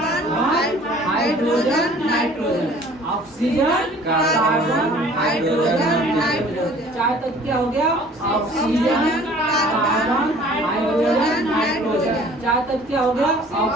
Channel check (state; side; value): normal; both; correlation 0.51